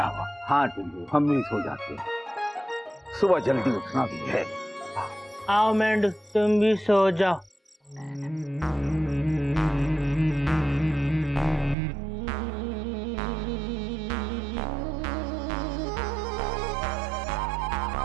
हाँ टुल्लू, हम भी सो जाते हैं, सुबह जल्दी उठना भी है। आओ मेंढू, तुम भी सो जाओ।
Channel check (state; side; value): drops out; left; at 11.8 s